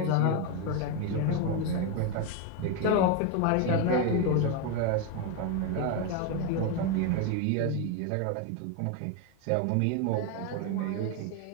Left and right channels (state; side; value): different; both; correlation 0.02